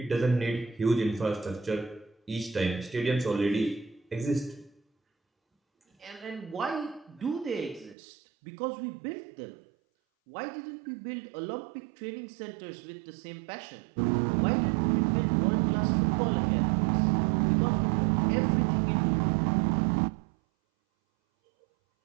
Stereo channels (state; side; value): drops out; left; at 8.0 s